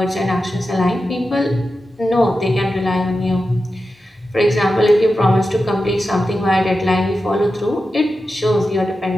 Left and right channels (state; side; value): normal; both; correlation 0.91